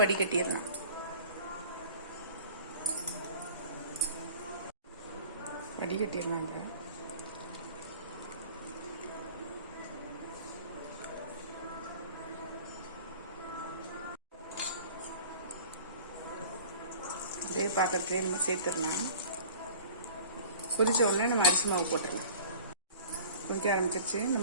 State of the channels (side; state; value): both; inverted; correlation -0.44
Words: வடிகட்டிடலாம். வடிகட்டிடலாங்க. அதே பாத்திரத்துலேயே நம்ம சேர்த்துடலாம். கொதிச்ச உடனே நம்ம அரிசி மாவு போட்டுடலாம். கொதிக்க ஆரம்பிச்சிருச்சு.